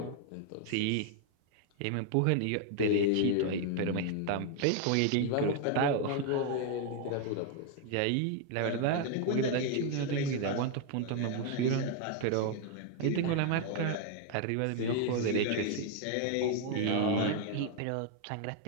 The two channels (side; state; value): both; different; correlation 0.00